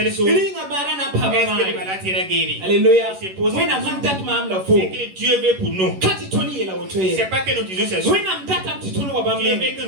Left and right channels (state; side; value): late; left; 11 ms